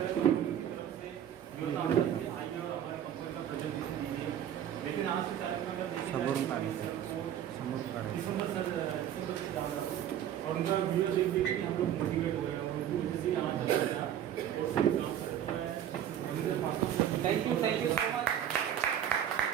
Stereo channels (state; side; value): quieter; left; 10.3 dB